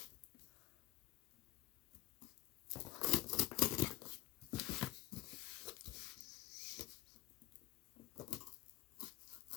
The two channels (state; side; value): quieter; right; 17.4 dB